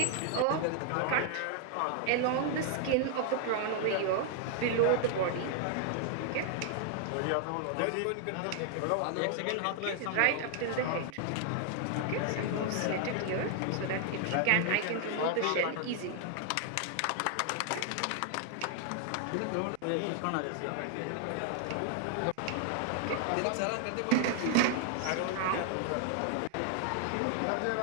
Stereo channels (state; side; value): different; both; correlation 0.00